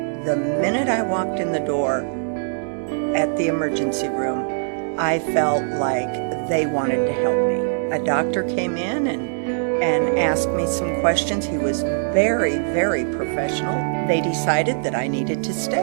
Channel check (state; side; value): silent; left; 63 dB below the other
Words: the minute I walked in the door at the emergency room, I felt like they wanted to help me. A doctor came in and asked me some questions. He was very, very professional. They decided that I needed to